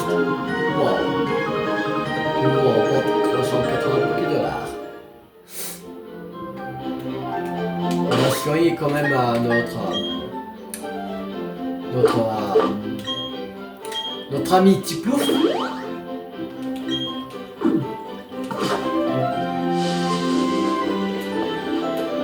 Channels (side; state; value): both; identical; correlation 1.00